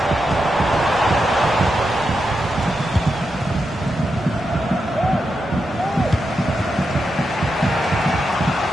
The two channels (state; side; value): normal; both; correlation 0.86